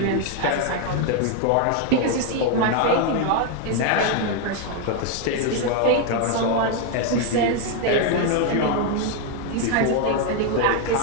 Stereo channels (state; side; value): different; both; correlation 0.01